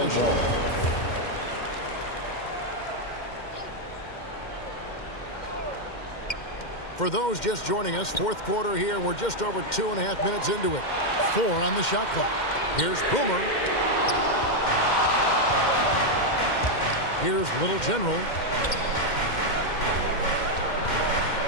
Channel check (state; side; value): late; right; 2.1 ms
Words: For those just joining us, fourth quarter here, and we're just over 2.5 minutes into it. 4 on the shot clock. Here's Boomer. Here's Little General.